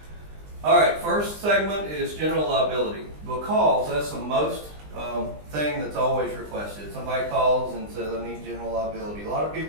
All right, first segment is general liability, because that's the most thing that's always requested. Somebody calls and says, I need general liability. A lot of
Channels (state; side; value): late; left; 20 ms